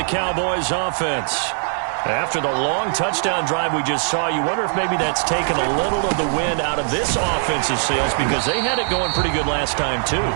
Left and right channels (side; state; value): left; silent; 64 dB below the other